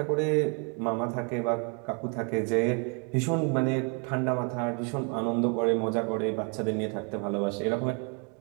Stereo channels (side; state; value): left; quieter; 36.6 dB